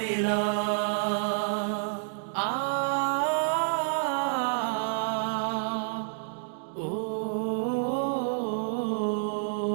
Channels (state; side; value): silent; left; digital silence